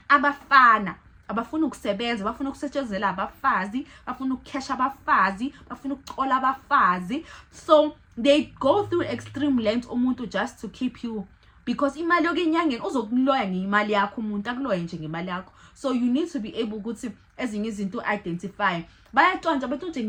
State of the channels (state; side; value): identical; both; correlation 1.00